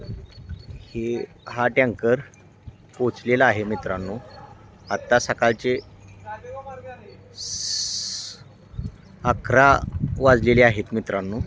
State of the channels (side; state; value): both; identical; correlation 1.00